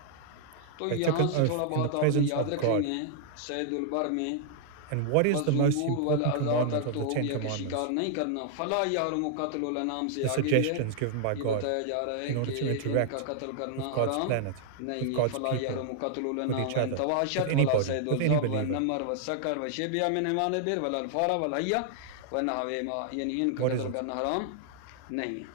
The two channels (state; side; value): different; both; correlation -0.01